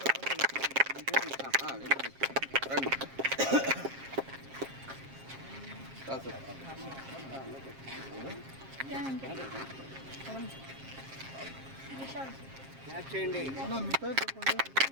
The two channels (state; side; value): late; left; 7.5 ms